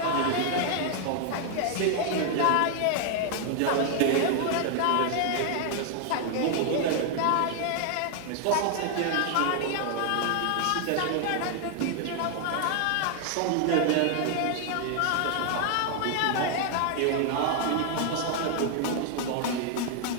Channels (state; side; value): different; both; correlation 0.00